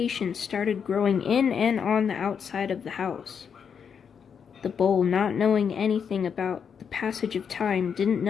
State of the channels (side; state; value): right; quieter; 7.0 dB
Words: started growing in and on the outside of the house. The bowl, not knowing anything about the passage of time, didn't